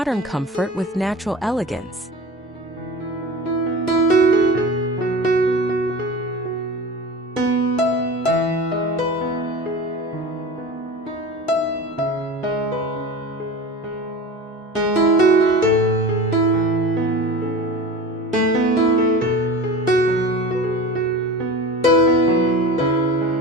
comfort with natural elegance.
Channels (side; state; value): both; normal; correlation 0.33